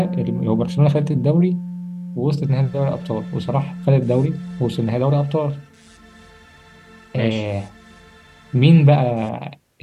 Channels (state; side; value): identical; both; correlation 1.00